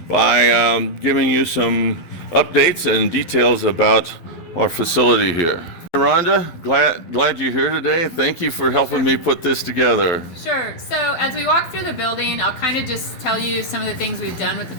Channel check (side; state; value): right; late; 11 ms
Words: by giving you some updates and details about our facility here. Rhonda, glad you're here today. Thank you for helping me put this together. Sure. So as we walk through the building, I'll kind of just tell you some of the things we've done with the